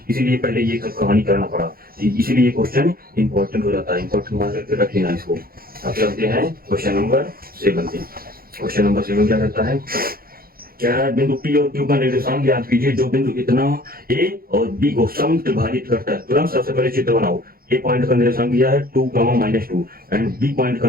इसीलिए पहले ये सब कहानी करना पड़ा, इसीलिए ये क्वेश्चन इंपॉर्टेंट हो जाता है। इंपॉर्टेंट मान करके रख लेना इसको। अब चलते हैं क्वेश्चन नंबर 7 पे। क्वेश्चन नंबर 7 क्या कहता है, क्या है बिंदु P और Q का निर्देशांक ज्ञात कीजिए जो बिंदु इतना A और B को समत्रिभाजित करता है। तुरंत सबसे पहले चित्र बनाओ। A पॉइंट का निर्देशांक दिया है 2, -2 एंड B पॉइंट का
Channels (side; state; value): left; late; 0.43 ms